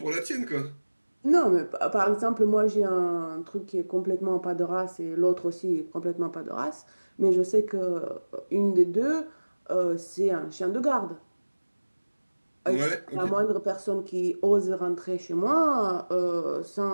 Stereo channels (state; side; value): inverted; both; correlation -1.00